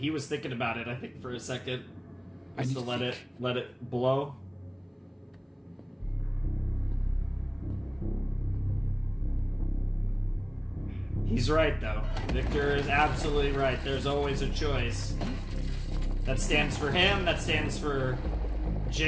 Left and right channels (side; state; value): both; identical; correlation 1.00